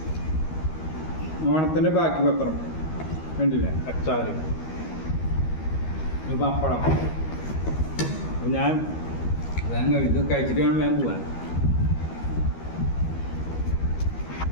ഓണത്തിൻ്റെ ബാക്കി പത്രം കണ്ടില്ലേ, അച്ചാറ്, ഒരു പപ്പടം. അപ്പോൾ ഞാൻ ഇത് കഴിച്ചിട്ട് വേണം ഞാൻ പോവാൻ.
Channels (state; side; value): late; right; 13 ms